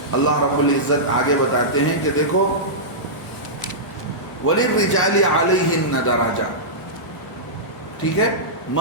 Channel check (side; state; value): both; normal; correlation -0.15